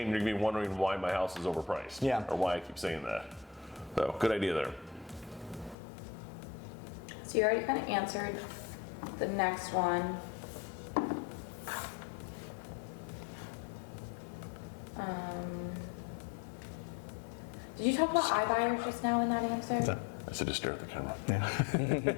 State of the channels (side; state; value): right; drops out; at 5.8 s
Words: You're going to be wondering why my house is overpriced. Yeah. Or why I keep saying that. So good idea there. So you already kind of answered the next one. Did you talk about iBuyers just now in that answer? I said just stare at the camera.